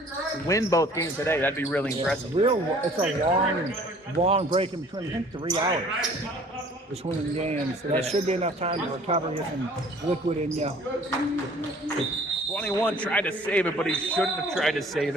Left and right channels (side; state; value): both; normal; correlation 0.53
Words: win both games today. That'd be really impressive. It's a long break in between. I think 3 hours between the games. So that should be enough time to recover, get some liquid in you. 21 tried to save it, but he shouldn't have tried to save